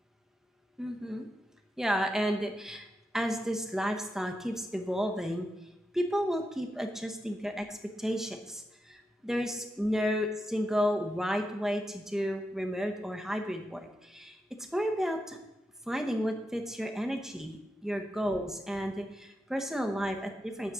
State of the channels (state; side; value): normal; both; correlation 0.87